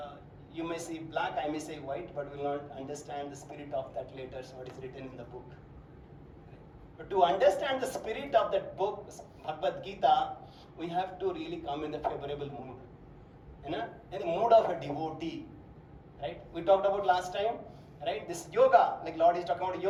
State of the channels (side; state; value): both; identical; correlation 1.00